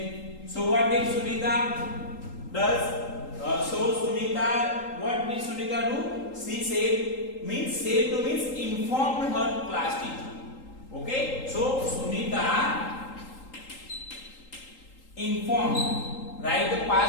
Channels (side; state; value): right; late; 3.8 ms